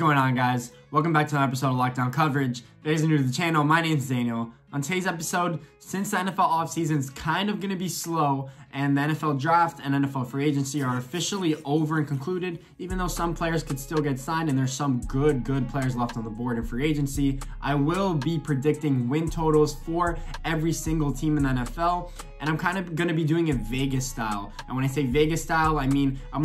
on, guys? Welcome back to another episode of Lockdown Coverage. If you guys are new to the channel, my name is Daniel. On today's episode, since the NFL offseason is kind of going to be slow and the NFL draft and NFL free agency are officially over and concluded, even though some players could still get signed and there's some good players left on the board in free agency, I will be predicting win totals for every single team in the NFL. And I'm kind of going to be doing it Vegas style. And when I say Vegas style, I mean I'm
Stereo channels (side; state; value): both; identical; correlation 1.00